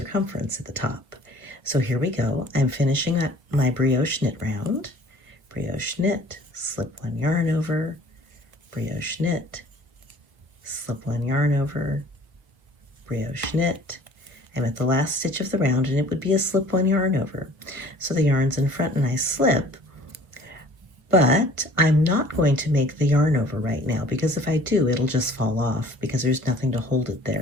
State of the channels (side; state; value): left; late; 1.2 ms